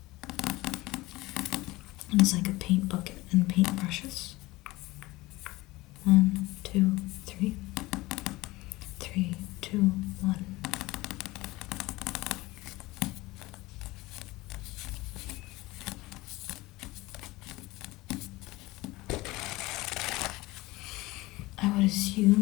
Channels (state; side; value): quieter; right; 20.1 dB